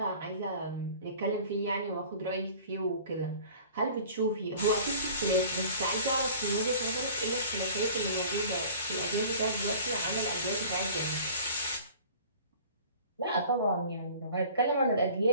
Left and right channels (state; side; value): inverted; both; correlation -0.45